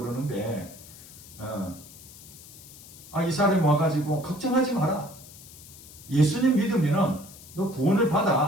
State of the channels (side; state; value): left; noise; hiss, 18 dB below the sound